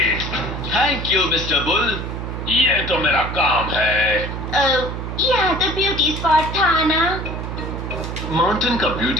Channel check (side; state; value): right; noise; hum, 6 dB below the sound